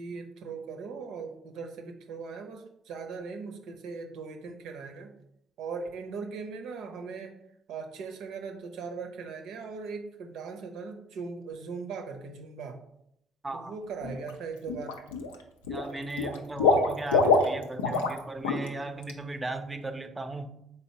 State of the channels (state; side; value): normal; both; correlation 0.35